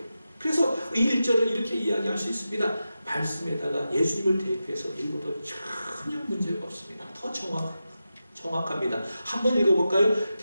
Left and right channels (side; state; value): both; inverted; correlation -0.91